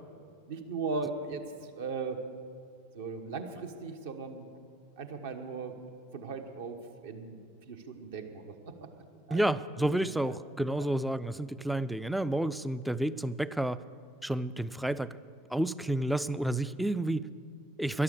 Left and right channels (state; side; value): normal; both; correlation 0.75